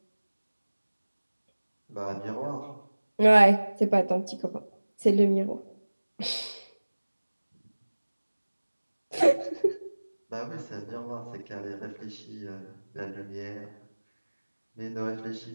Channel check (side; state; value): both; inverted; correlation -1.00